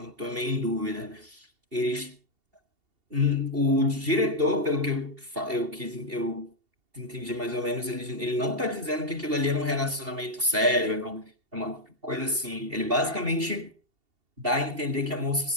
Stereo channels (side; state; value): left; late; 2.7 ms